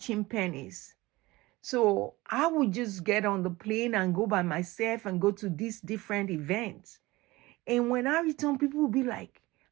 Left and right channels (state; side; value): quieter; left; 20.3 dB